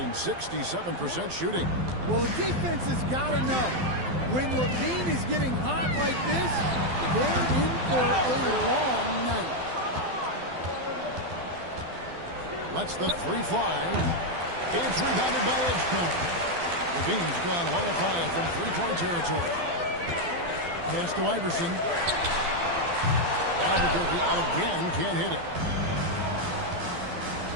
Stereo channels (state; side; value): late; left; 12 ms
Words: 67% shooting. Well, the defense has got to know, when Levine is getting hot like this, they're in for a long night. Lets the 3 fly. It's rebounded by Edgecombe. Levine's gone 1 of 5 from 3-point territory. Pass to Iverson. Albuquerque again can't hit it.